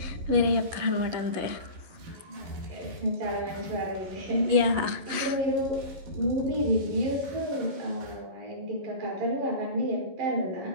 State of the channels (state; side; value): late; left; 11 ms